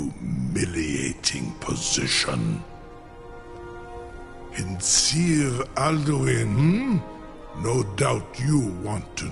position. In Sir Alduin, no doubt you want to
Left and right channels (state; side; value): identical; both; correlation 1.00